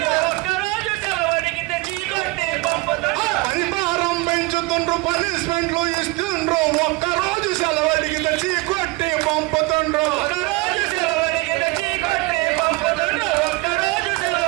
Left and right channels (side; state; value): left; quieter; 22.6 dB